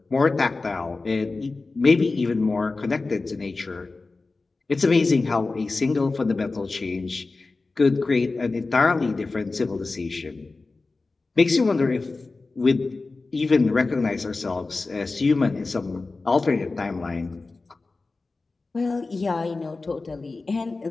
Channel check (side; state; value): right; quieter; 3.6 dB